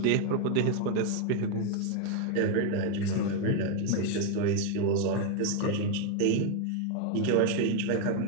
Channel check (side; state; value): both; different; correlation 0.01